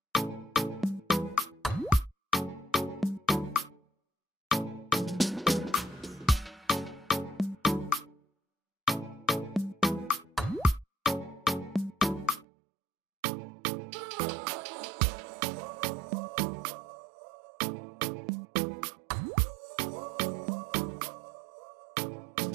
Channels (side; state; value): left; drops out; at 12.5 s